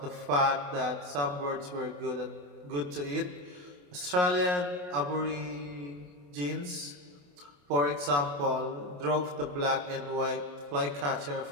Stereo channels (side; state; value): left; late; 28 ms